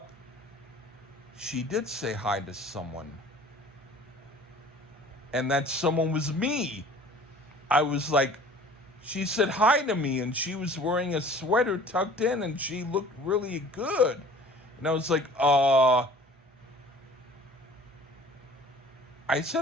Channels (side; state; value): both; normal; correlation 0.47